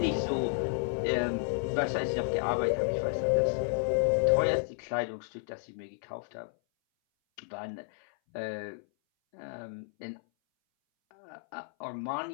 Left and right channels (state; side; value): silent; right; 57 dB below the other